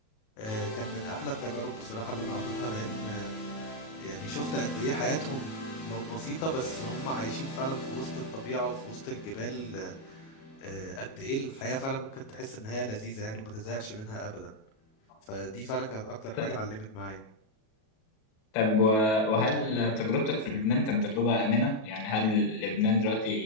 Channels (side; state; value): right; late; 37 ms